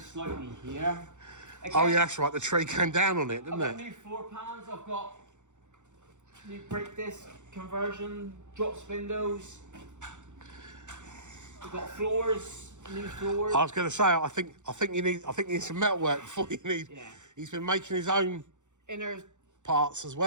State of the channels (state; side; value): late; left; 0.85 ms